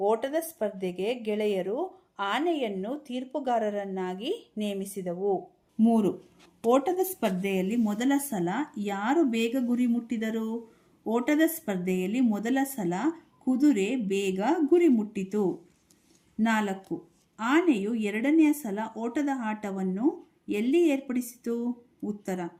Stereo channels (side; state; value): both; identical; correlation 1.00